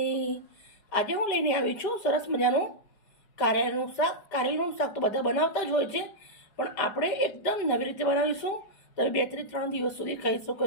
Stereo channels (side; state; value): right; late; 5.0 ms